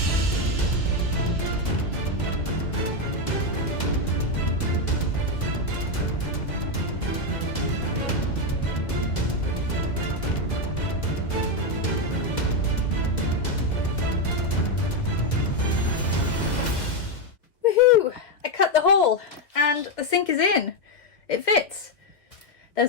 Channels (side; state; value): right; late; 2.0 ms